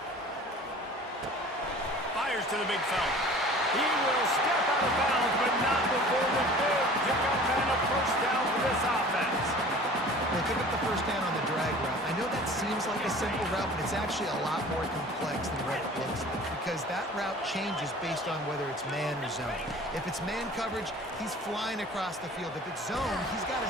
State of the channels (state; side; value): normal; both; correlation 0.45